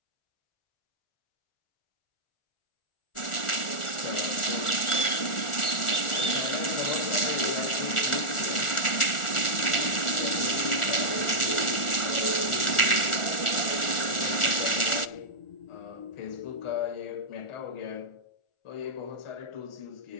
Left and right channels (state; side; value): late; right; 1.4 ms